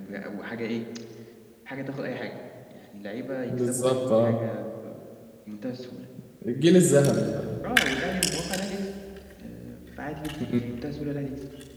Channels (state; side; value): identical; both; correlation 1.00